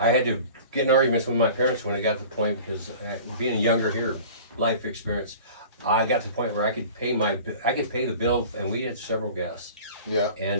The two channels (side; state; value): both; inverted; correlation -0.42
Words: had to get in arguments with my parents when I got to the point because being younger here, life experience, I got to the point where I could pay the bill, and we had several guests. Yeah.